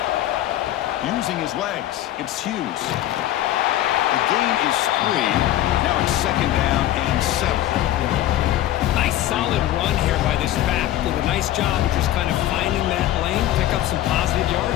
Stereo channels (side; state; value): right; quieter; 13.6 dB